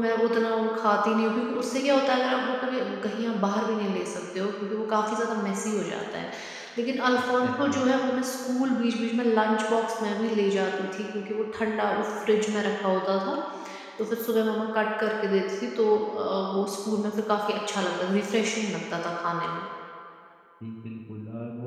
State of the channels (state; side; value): identical; both; correlation 1.00